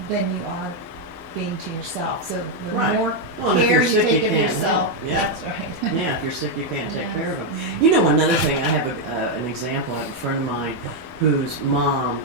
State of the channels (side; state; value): both; normal; correlation 0.01